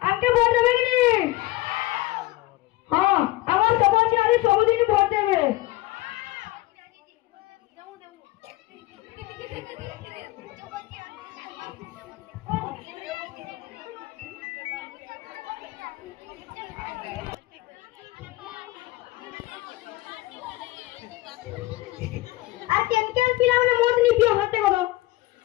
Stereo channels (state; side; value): quieter; right; 18.6 dB